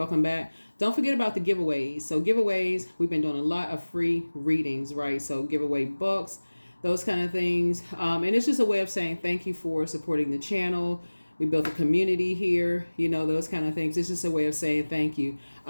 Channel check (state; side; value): inverted; both; correlation -1.00